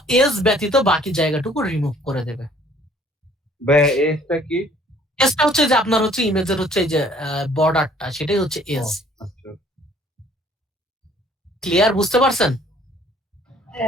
এজ ব্যতীত বাকি জায়গাটুকু রিমুভ করে দেবে। এজটা কি? এজটা হচ্ছে যে আপনার হচ্ছে ইমেজের হচ্ছে এই যে বর্ডারটা, সেটাই হচ্ছে এজ। ক্লিয়ার? বুঝতে পারছেন?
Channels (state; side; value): normal; both; correlation 0.57